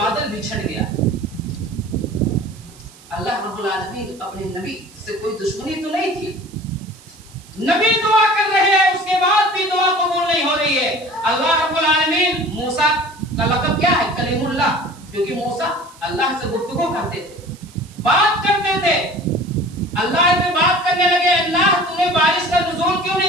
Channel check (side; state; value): right; noise; hiss, 24 dB below the sound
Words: بچھڑ گیا. اللہ رب العالمین اپنے نبی سے کوئی دشمنی تو نہیں تھی. نبی دعا کر رہے ہیں، اس کے بعد بھی دعا قبول نہیں ہو رہی ہے. اللہ رب العالمین موسیٰ کا لقب کیا ہے؟ کلیم اللہ، کیونکہ موسیٰ اللہ سے گفتگو کرتے تھے، بات کرتے تھے. اللہ سے بات کرنے لگے، اللہ تو نے بارش کا نزول کیوں